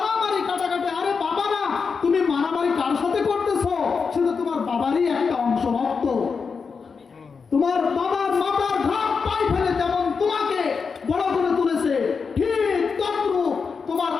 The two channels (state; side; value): quieter; right; 5.3 dB